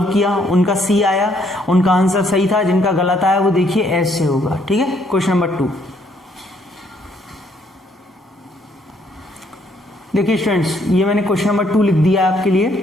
किया उनका C आया, उनका आंसर सही था। जिनका गलत आया वो देखिए S से होगा। ठीक है, क्वेश्चन नंबर 2। देखिए स्टूडेंट्स, ये मैंने क्वेश्चन नंबर 2 लिख दिया है आपके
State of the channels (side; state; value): both; normal; correlation 0.68